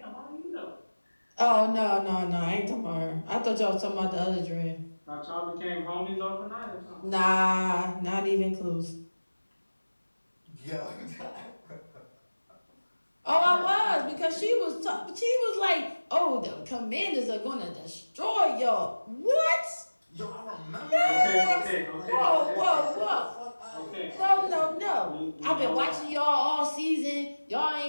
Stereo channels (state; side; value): inverted; both; correlation -1.00